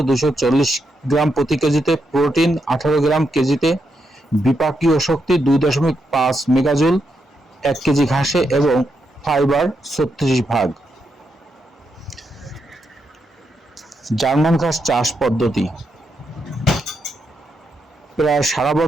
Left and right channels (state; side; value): normal; both; correlation 0.82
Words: 240 গ্রাম প্রতি কেজিতে, প্রোটিন 18 গ্রাম কেজিতে, বিপাকীয় শক্তি 2.5 মেগাজুল 1 কেজি ঘাসে এবং ফাইবার 36 ভাগ। জার্মান ঘাস চাষ পদ্ধতি: প্রায় সারা